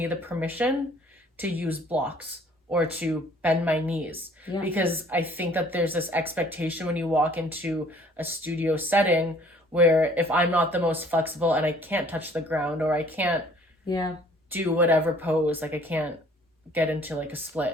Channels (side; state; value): both; normal; correlation 0.56